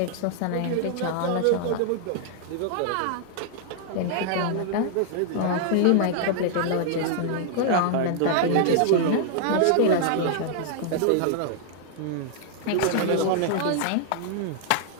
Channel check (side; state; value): both; different; correlation -0.01